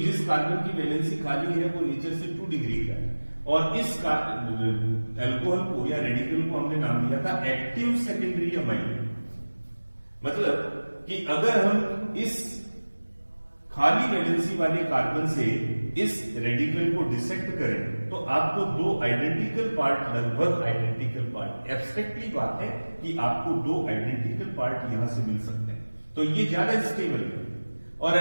जिस कार्बन की वैलेंसी खाली है वो नेचर से 2 डिग्री का है, और इस अल्कोहल को या रेडिकल को हमने नाम दिया था एक्टिव सेकेंडरी अमाइल। मतलब कि अगर हम इस खाली वैलेंसी वाले कार्बन से इस रेडिकल को डिसेक्ट करें तो आपको 2 आइडेंटिकल पार्ट, लगभग आइडेंटिकल पार्ट, एब्स्ट्रैक्टली बात है कि आपको 2 आइडेंटिकल पार्ट यहां से मिल सकते हैं, तो ये ज्यादा स्टेबल है। और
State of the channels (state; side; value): inverted; both; correlation -1.00